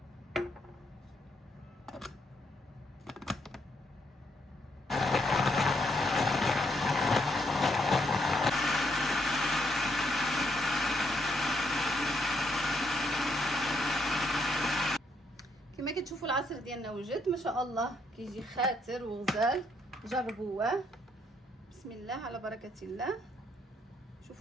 كما كتشوفوا العصير ديالنا وجد ما شاء الله، كيجي خاتر وغزال. جربوه بسم الله على بركه الله.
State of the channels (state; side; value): normal; both; correlation 0.74